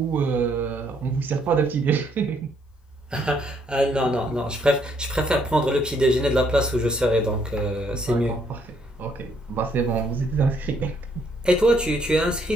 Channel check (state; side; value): normal; both; correlation 0.69